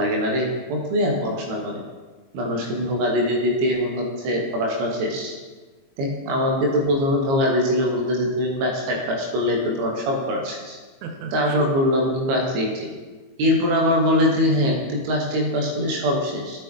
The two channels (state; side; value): late; left; 22 ms